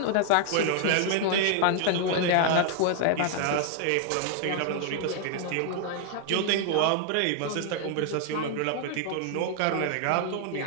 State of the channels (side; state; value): both; different; correlation 0.00